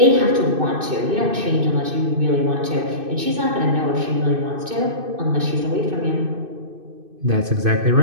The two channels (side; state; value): left; late; 2.6 ms